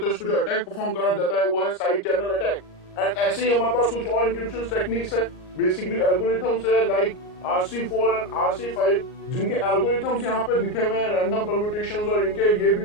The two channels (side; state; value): right; late; 38 ms